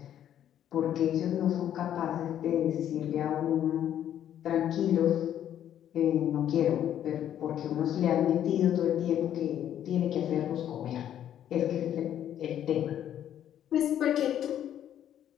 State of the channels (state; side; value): quieter; right; 10.6 dB